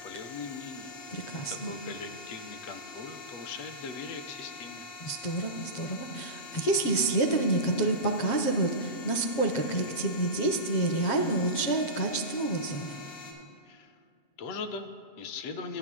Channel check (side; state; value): right; late; 7.4 ms